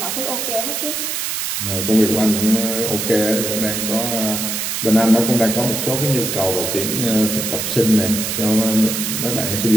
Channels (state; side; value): noise; right; hiss, 2 dB below the sound